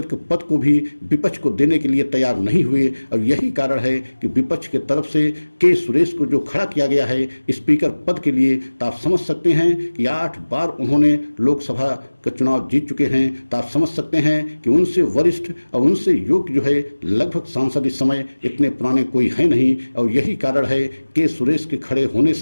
के पद को भी विपक्ष को देने के लिए तैयार नहीं हुए। और यही कारण है कि विपक्ष के तरफ से के सुरेश को जो खड़ा किया गया है स्पीकर पद के लिए, तो आप समझ सकते हैं कि 8 बार उन्होंने लोकसभा का चुनाव जीत चुके हैं। तो आप समझ सकते हैं कि उनसे वरिष्ठ और उनसे योग्य जो है लगभग सांसद इस समय इतने पुराने कोई है नहीं। और यही कारण है कि सुरेश के खड़े होने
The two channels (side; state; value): both; inverted; correlation -1.00